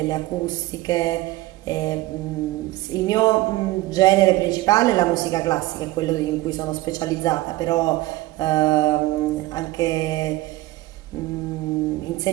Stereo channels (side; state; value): left; quieter; 18.0 dB